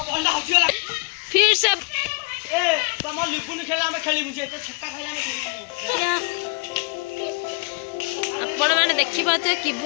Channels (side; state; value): right; quieter; 32.1 dB